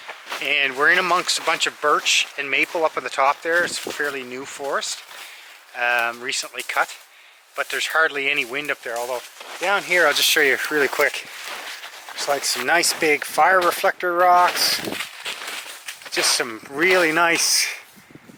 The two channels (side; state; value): both; identical; correlation 1.00